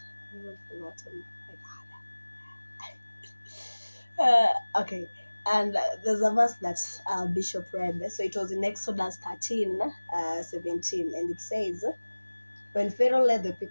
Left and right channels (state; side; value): inverted; both; correlation -1.00